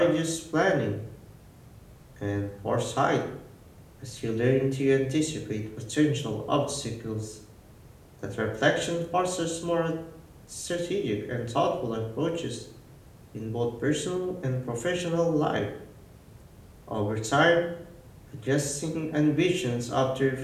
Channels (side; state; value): both; identical; correlation 1.00